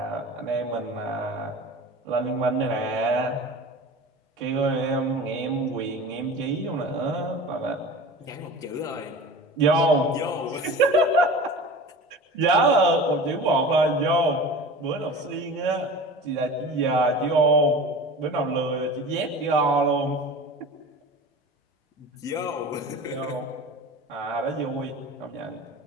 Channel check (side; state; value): both; normal; correlation 0.36